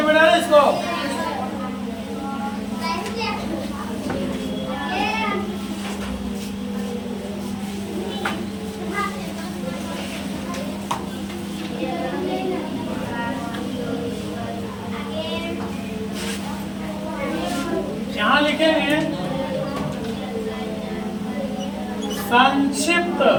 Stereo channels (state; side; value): identical; both; correlation 1.00